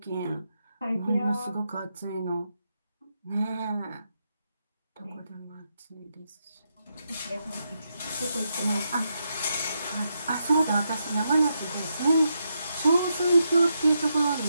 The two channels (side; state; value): both; inverted; correlation -0.83